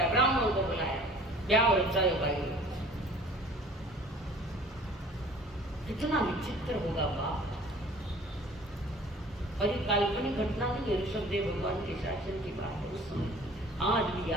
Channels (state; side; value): normal; both; correlation 0.49